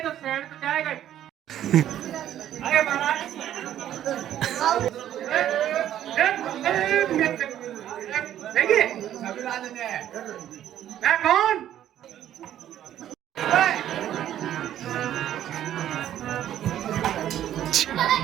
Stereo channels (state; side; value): quieter; left; 11.5 dB